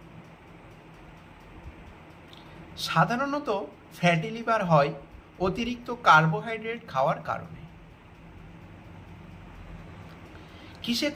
সাধারণত ফ্যাটি লিভার হয় অতিরিক্ত কার্বোহাইড্রেট খাওয়ার কারণে। কিসে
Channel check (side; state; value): both; identical; correlation 1.00